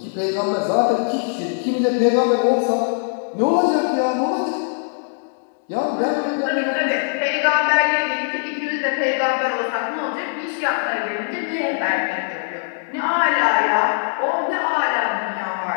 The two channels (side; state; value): right; silent; digital silence